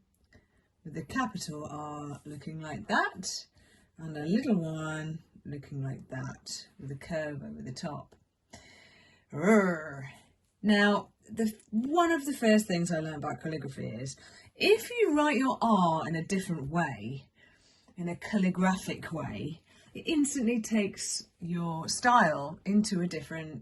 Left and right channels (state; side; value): identical; both; correlation 1.00